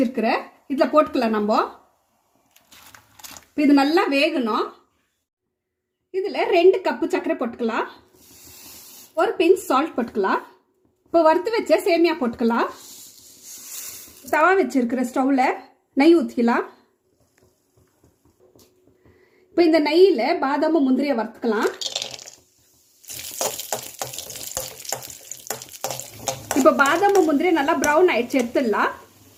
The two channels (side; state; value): both; identical; correlation 1.00